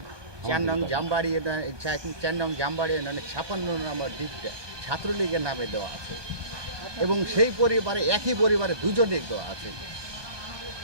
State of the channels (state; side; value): late; left; 1.2 ms